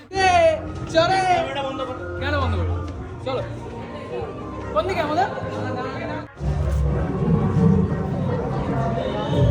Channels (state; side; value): identical; both; correlation 1.00